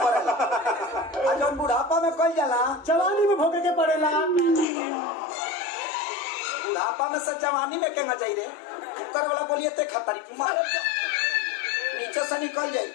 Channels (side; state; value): right; drops out; at 4.7 s